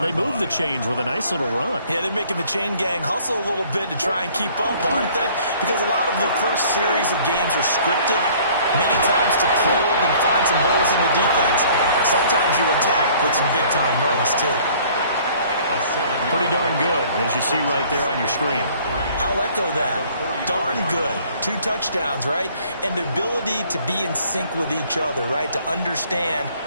They move the chains with a nice little run. Yeah, they're making the chain gang hustle a little bit to try and keep up, aren't they? Because a lot of the first series of games are scripted, many times to probe and find some holes in the defense. Sometimes you attack with some big-time runs, too. Pretty darn good, as you see right there on your screen. I'll echo that. Darn good. 2 touchdowns, right? And the ability to be in sync with each other, right? To understand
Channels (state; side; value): inverted; both; correlation -0.55